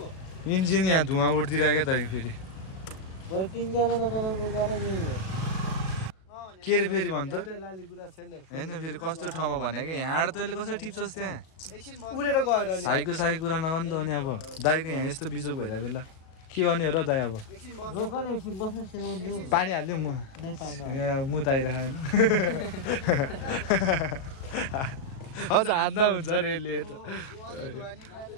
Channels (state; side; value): late; right; 37 ms